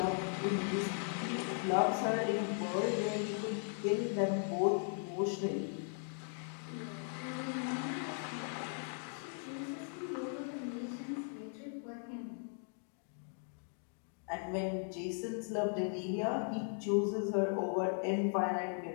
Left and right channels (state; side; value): silent; right; 52 dB below the other